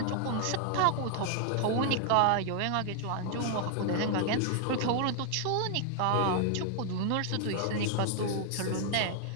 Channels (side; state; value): both; different; correlation 0.00